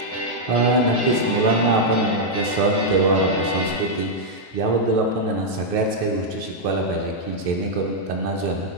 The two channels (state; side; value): late; right; 9.4 ms